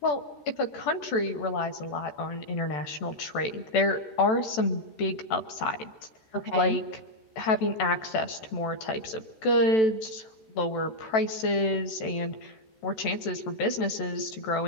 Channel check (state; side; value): late; right; 14 ms